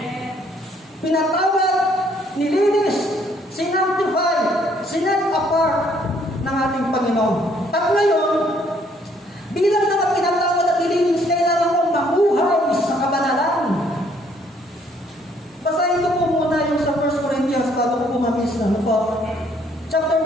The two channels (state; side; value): normal; both; correlation 0.65